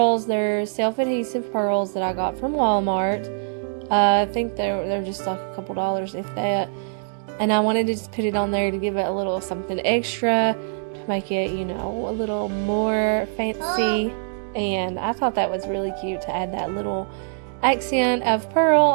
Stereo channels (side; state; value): left; silent; digital silence